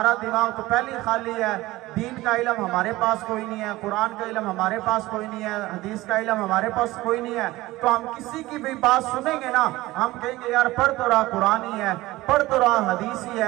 دماغ تو پہلے خالی ہے، دین کا علم ہمارے پاس کوئی نہیں ہے، قرآن کا علم ہمارے پاس کوئی نہیں ہے، حدیث کا علم ہمارے پاس کوئی نہیں ہے، تو ہم کسی کی بھی بات سنیں گے نا، ہم کہیں گے یار پڑھ تو رہا قرآن ہی ہے، پڑھ تو رہا حدیث ہی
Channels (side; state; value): left; quieter; 18.5 dB